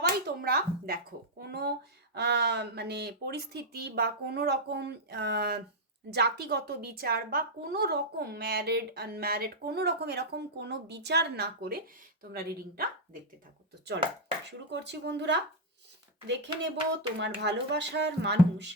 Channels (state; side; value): normal; both; correlation -0.03